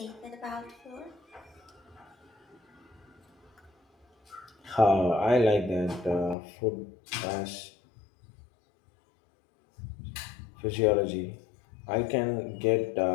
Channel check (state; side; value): drops out; right; at 6.4 s